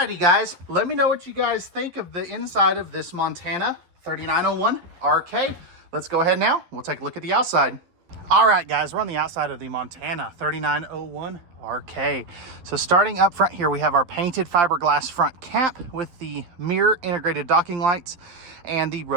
guys, let me know what you guys think of the inside of this Montana 3901 RK. Let's go ahead now. We'll take a look at the outside. All right, guys, we're on the outside of the Montana 3901 RK. So starting up front here, we have our painted fiberglass front cap with the mirror integrated docking lights and the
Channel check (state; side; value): late; left; 12 ms